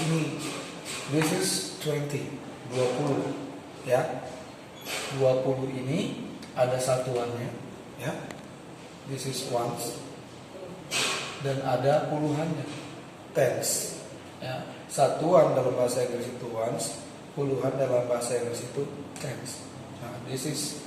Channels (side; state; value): both; identical; correlation 1.00